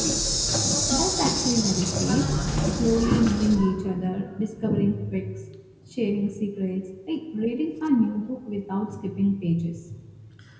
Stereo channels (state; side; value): identical; both; correlation 1.00